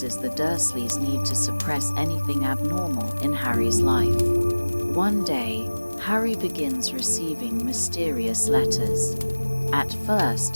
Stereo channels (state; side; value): inverted; both; correlation -1.00